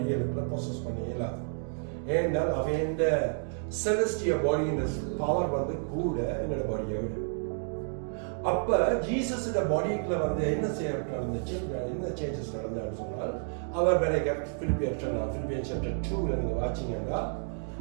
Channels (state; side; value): silent; left; 58 dB below the other